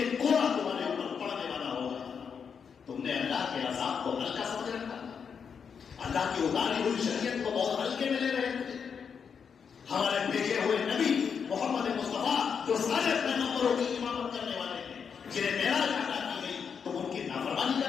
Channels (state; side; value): quieter; right; 6.6 dB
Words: کوڑا تمہارے اوپر پڑنے والا ہوگا. تم نے اللہ کے عذاب کو ہلکا سمجھ رکھا، اللہ کی اتاری ہوئی شریعت کو بہت ہلکے میں لے رہے تھے. ہمارے بھیجے ہوئے نبی محمد مصطفیٰ جو سارے پیغمبروں کی امامت کرنے والے ہیں، جنہیں معراج عطا کی گئی، تم ان کی نافرمانی